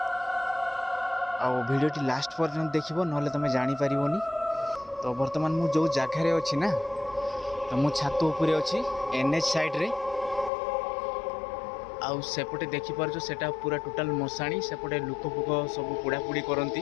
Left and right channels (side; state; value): right; drops out; at 10.5 s